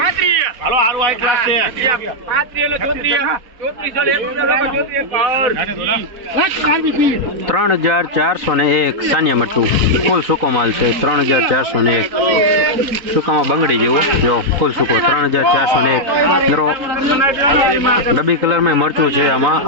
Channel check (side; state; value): left; late; 4.2 ms